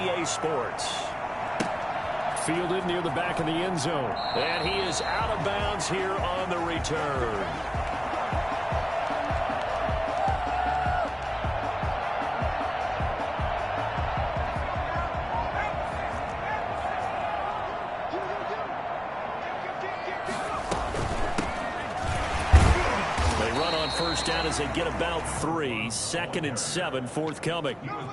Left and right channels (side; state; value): both; identical; correlation 1.00